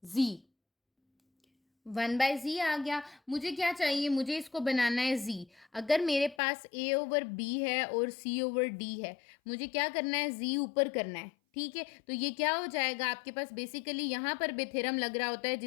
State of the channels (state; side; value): drops out; right; at 6.4 s